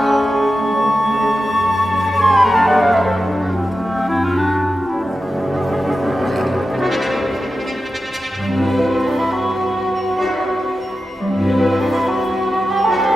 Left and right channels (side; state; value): both; normal; correlation 0.92